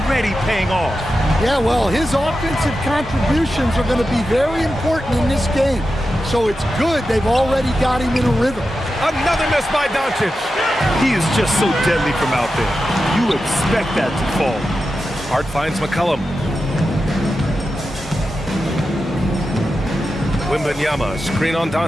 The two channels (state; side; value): normal; both; correlation 0.91